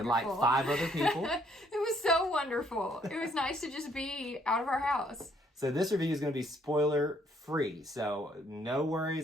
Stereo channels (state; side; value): normal; both; correlation 0.67